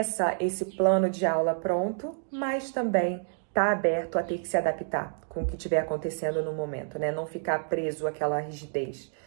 esse plano de aula pronto, mas também tá aberto a ter que se adaptar com o que estiver acontecendo no momento, né? Não ficar preso àquela rigidez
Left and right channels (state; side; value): silent; left; digital silence